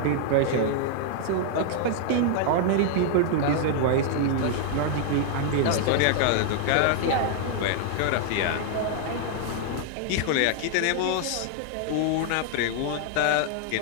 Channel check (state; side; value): different; both; correlation -0.01